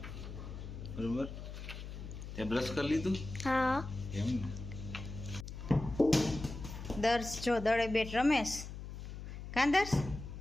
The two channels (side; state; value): left; noise; hum, 9 dB below the sound